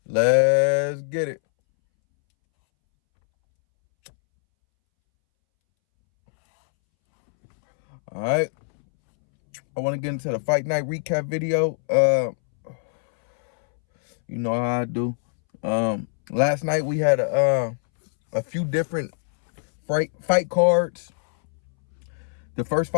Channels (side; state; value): right; silent; 63 dB below the other